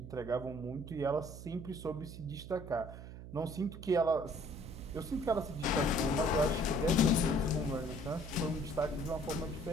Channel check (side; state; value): right; noise; hum, 12 dB below the sound